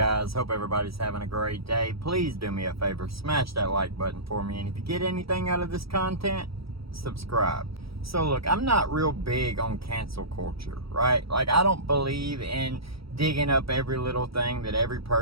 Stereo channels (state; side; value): late; left; 0.76 ms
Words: Hope everybody's having a great day. Please do me a favor, smash that like button for me, and if you get anything out of this content, subscribe. So look, I'm not real big on cancel culture, right? Like, I don't believe in digging up every little thing that every